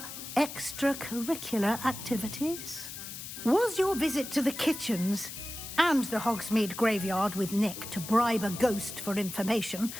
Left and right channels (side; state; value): left; noise; hiss, 10 dB below the sound